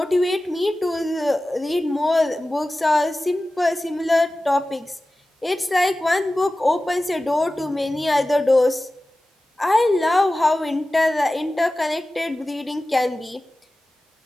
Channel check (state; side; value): normal; both; correlation 0.96